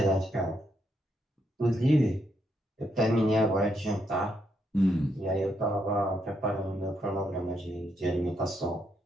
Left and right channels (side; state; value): both; normal; correlation 0.78